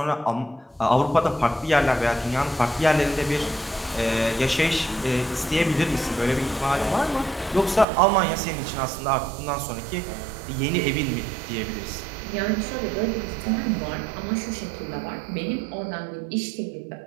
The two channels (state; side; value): drops out; left; at 7.9 s